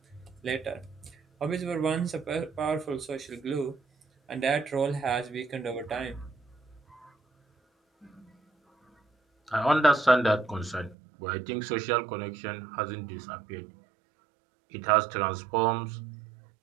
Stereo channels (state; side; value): drops out; left; at 11.0 s